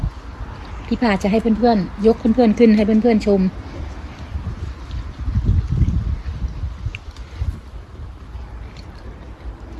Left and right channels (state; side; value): identical; both; correlation 1.00